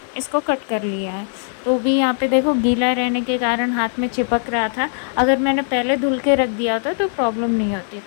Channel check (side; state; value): right; silent; 64 dB below the other